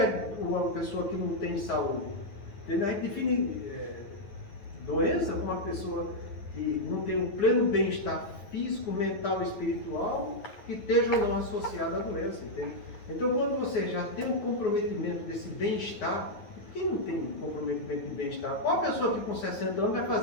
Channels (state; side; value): late; right; 9.7 ms